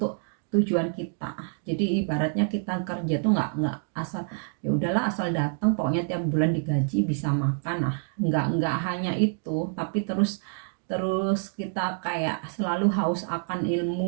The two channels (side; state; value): left; silent; 60 dB below the other